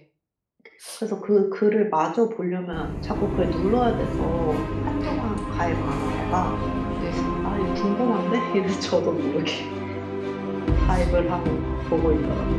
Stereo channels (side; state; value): both; identical; correlation 1.00